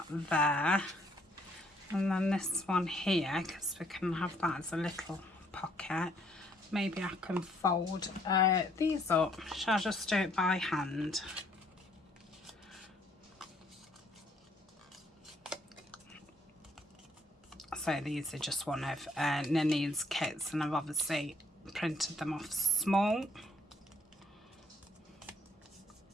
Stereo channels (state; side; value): normal; both; correlation 0.65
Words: there, and then this one here, because we can have that as a little pocket. Maybe I can fold these up. Shall I just do it by hand? So these are just one of Nini's kits, and I've obviously printed them off small.